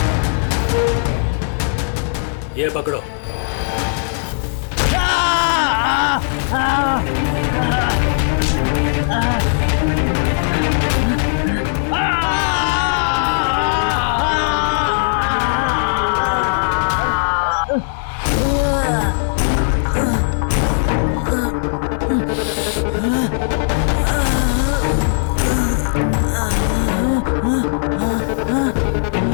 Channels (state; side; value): silent; right; 67 dB below the other